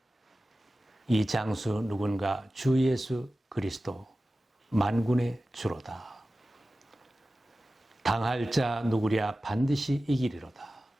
이 장수 누군가 주 예수 그리스도 만군의 주로다. 당할 자 누구랴 반드시 이기리로다.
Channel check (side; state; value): both; normal; correlation 0.95